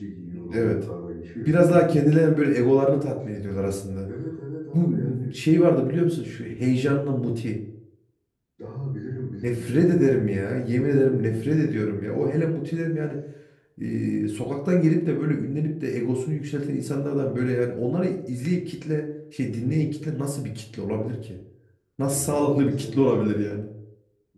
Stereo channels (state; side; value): identical; both; correlation 1.00